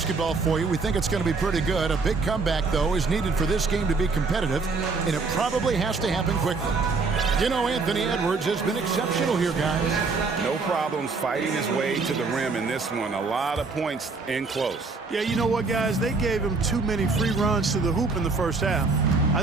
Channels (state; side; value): quieter; left; 4.2 dB